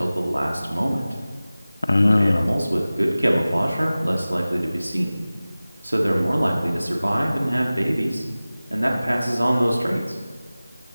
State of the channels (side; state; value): both; inverted; correlation -0.97